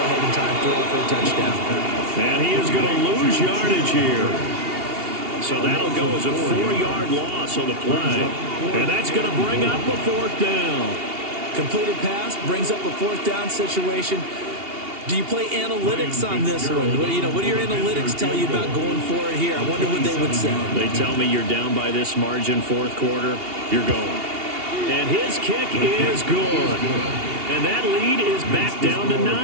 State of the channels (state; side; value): late; left; 2.8 ms